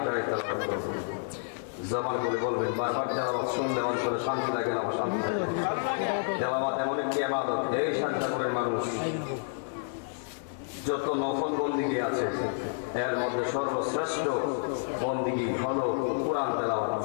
তেলাওয়াত করব, জবান করে বলবেন। বারবার তেলাওয়াত শুনলে অন্তরে শান্তি লাগে না অশান্তি লাগে? তেলাওয়াত এমন একটি ইবাদত, এই শাহজাদপুরের মানুষ যত নফল বন্দিগি আছে এর মধ্যে সর্বশ্রেষ্ঠ বন্দিগি হলো কোরআন তেলাওয়াত।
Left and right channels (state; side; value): silent; right; 58 dB below the other